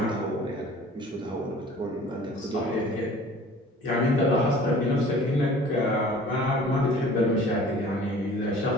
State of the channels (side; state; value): both; normal; correlation 0.47